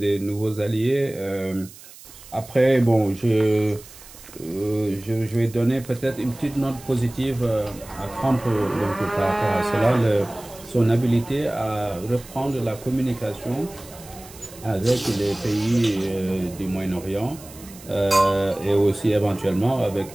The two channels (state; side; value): noise; right; hiss, 19 dB below the sound